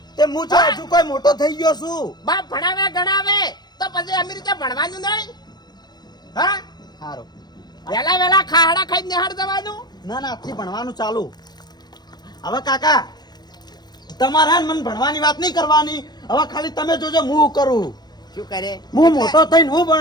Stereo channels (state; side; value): late; right; 0.20 ms